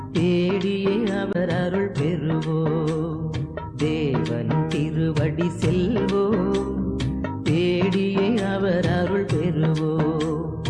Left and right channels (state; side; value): identical; both; correlation 1.00